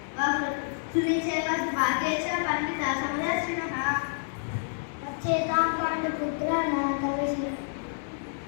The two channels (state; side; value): silent; right; digital silence